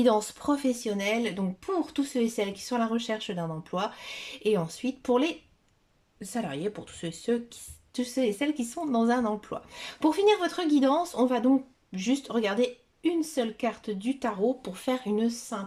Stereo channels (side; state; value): both; identical; correlation 1.00